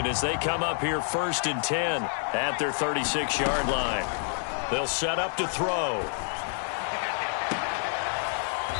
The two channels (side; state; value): right; silent; 59 dB below the other